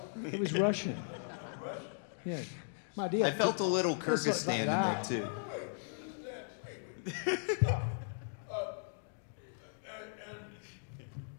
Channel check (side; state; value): right; silent; digital silence